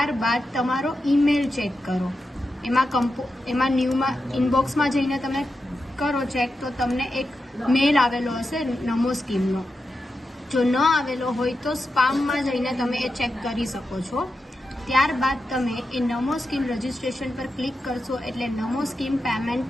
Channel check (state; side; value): normal; both; correlation 0.89